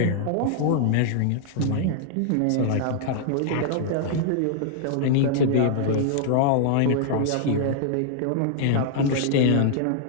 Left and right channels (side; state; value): both; different; correlation -0.01